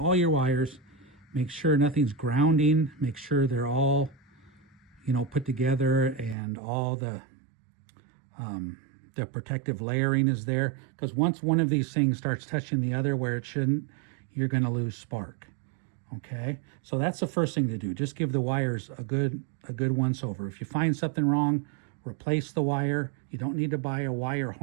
your wires, make sure nothing's grounding, make sure they're all, put together, and all the protective layering is there, because once one of these things starts touching the other where it shouldn't, you're going to lose spark. Okay, so that's the first thing to do. Just give the wires a good once over. If you find something wrong, replace the wire. You don't need to buy a wire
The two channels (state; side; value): drops out; left; at 6.4 s